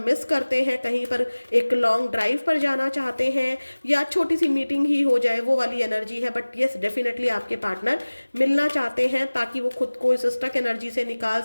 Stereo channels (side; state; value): both; inverted; correlation -1.00